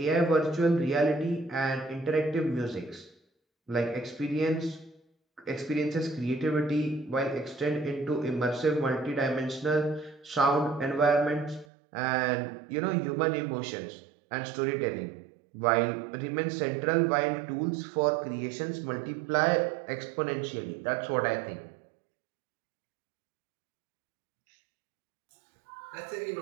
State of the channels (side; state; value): left; drops out; at 11.7 s